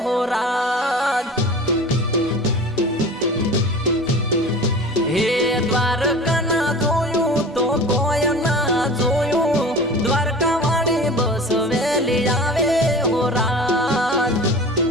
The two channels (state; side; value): normal; both; correlation 0.38